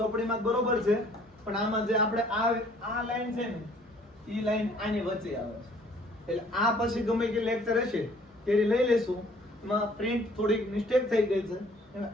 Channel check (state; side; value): normal; both; correlation 0.57